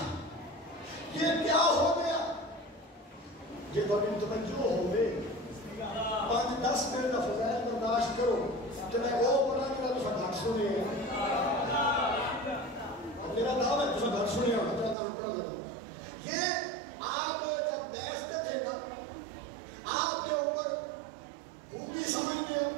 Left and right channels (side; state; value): left; drops out; at 15.0 s